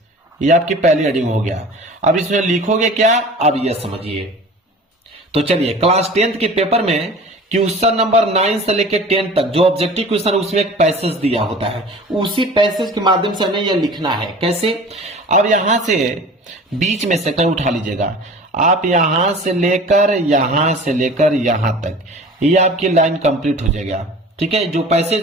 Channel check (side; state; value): both; normal; correlation 0.41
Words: ये आपकी पहली हेडिंग हो गया। अब इसमें लिखोगे क्या, अब ये समझिए। तो चलिए क्लास 10th के पेपर में क्वेश्चन नंबर 9 से लेकर 10 तक जो ऑब्जेक्टिव क्वेश्चन है उसमें एक पैसेज दिया होता है, उसी पैसेज के माध्यम से हमें यह लिखना है। कैसे, अब यहां से बीच में से कहीं उठा लीजिएगा, आप यहां से लेकर यहां तक, ये आपकी लाइन कंप्लीट हो जाएगा, ठीक है। जो पैसेज